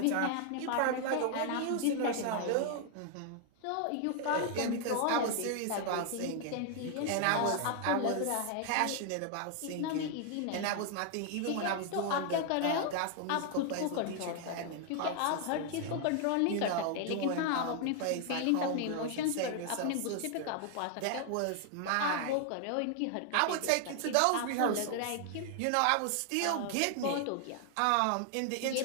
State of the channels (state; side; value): different; both; correlation 0.00